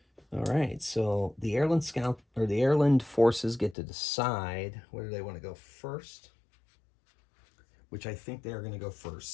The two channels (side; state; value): right; drops out; at 3.8 s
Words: All right, so the Airland Scout or the Airland forces get to decide whether they want to go first, which I think they are going to go first.